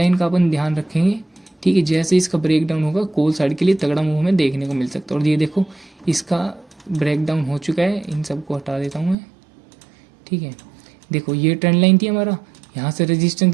का अपन ध्यान रखेंगे, ठीक है। जैसे इसका ब्रेक डाउन होगा कॉल साइड के लिए तगड़ा मूव हमें देखने को मिल सकता है। और ये देखो इसका ब्रेक डाउन हो चुका है, इन सबको हटा देता हूँ मैं, ठीक है। देखो ये ट्रेंड लाइन थी हमारा, यहाँ से रेजिस्टेंस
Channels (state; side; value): drops out; left; at 9.2 s